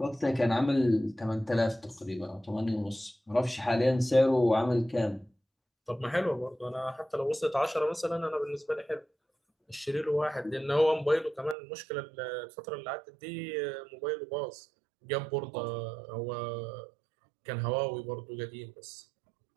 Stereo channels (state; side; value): drops out; left; at 11.6 s